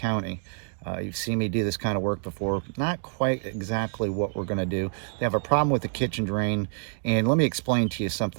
You've seen me do this kind of work before. Not quite exactly what we're going to do. They have a problem with the kitchen drain, and let me explain to you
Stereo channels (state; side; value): silent; left; digital silence